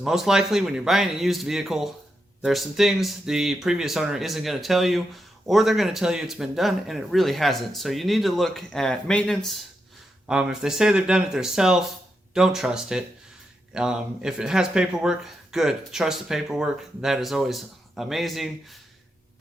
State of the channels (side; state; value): both; normal; correlation 0.85